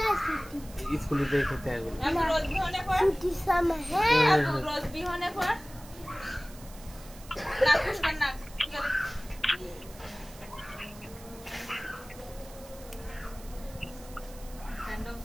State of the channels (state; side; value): noise; right; hiss, 20 dB below the sound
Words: স্কুলে যেয়ে খেতে হয় এগুলো। আমি রোজ বিহনে পড় আপু রোজ বিহনে পড় না কুশকার না